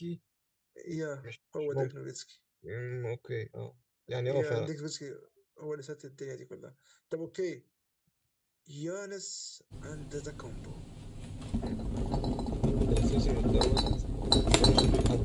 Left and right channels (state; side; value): identical; both; correlation 1.00